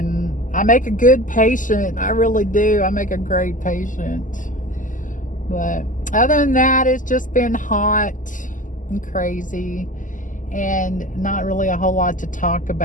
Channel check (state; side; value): late; right; 0.38 ms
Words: I make a good patient. I really do. I make a great patient. But other than that, it's just been hot and crazy, and not really a whole lot to talk